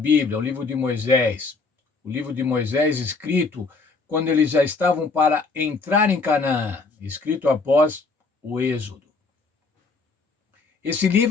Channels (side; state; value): right; quieter; 4.1 dB